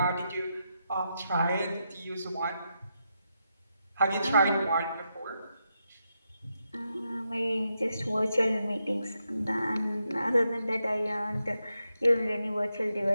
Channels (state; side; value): inverted; both; correlation -0.84